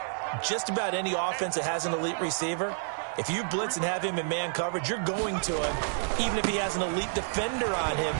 just about any offense that has an elite receiver, if you blitz and have him in man coverage, you're going to him, even if he has an elite defender on him,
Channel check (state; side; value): silent; left; digital silence